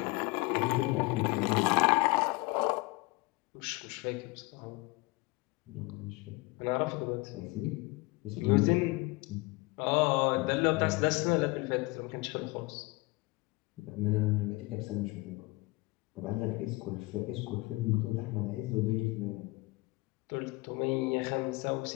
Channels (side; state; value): right; quieter; 23.8 dB